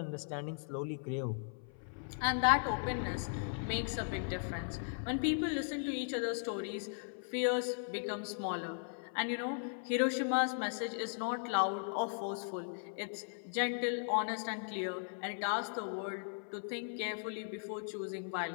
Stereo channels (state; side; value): silent; right; 53 dB below the other